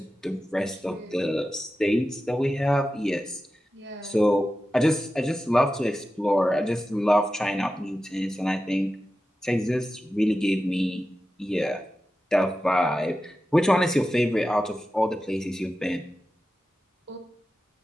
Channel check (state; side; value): normal; both; correlation 0.93